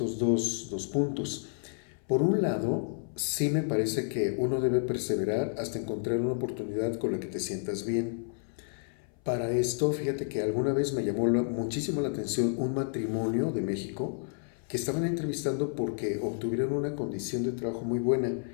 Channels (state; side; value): silent; right; 57 dB below the other